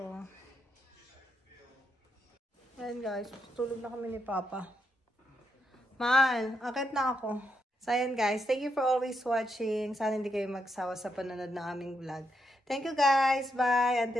Ayan guys, tulog na kami ni Papa. Mahal, akit na ako. So ayan guys, thank you for always watching. Sana hindi kayo magsawa sa panonood ng aming vlog. Thank you guys, bye!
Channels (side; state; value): both; normal; correlation 0.81